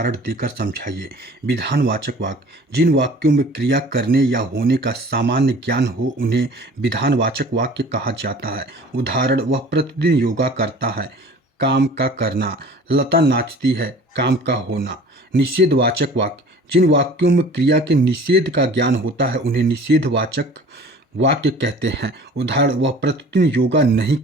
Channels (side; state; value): both; normal; correlation 0.46